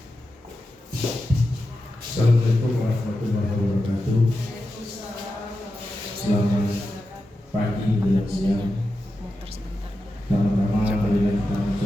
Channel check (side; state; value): both; normal; correlation 0.90